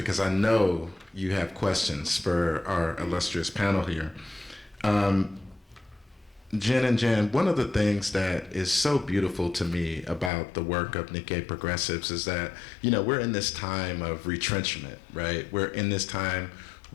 I know you have questions for our illustrious panel here. Jen and Jan, one of the things that is so beautiful to me about the work of Nikkei Progressives is that, we're in this time of retrenchment, right? We're in this time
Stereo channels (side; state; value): right; drops out; at 10.3 s